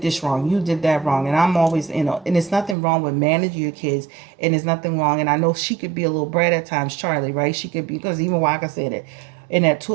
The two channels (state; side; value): drops out; left; at 2.8 s